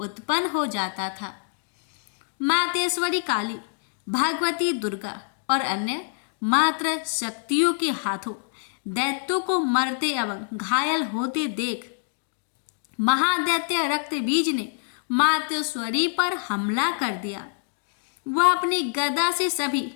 हो जाता था। मातेश्वरी काली, भगवती दुर्गा और अन्य मात्र शक्तियों के हाथों दैत्यों को मरते एवं घायल होते देख महादैत्य रक्तबीज ने मातेश्वरी पर हमला कर दिया। वह अपनी गदा से सभी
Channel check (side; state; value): right; silent; digital silence